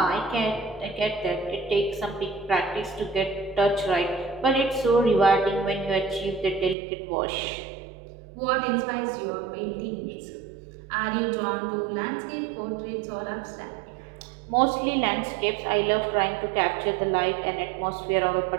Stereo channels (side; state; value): left; drops out; at 6.8 s